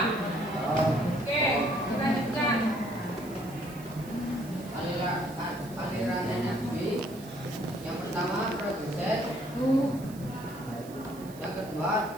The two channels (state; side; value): noise; right; hiss, 20 dB below the sound